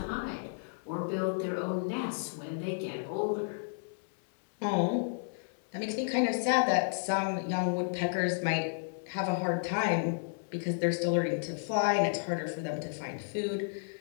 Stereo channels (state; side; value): silent; right; digital silence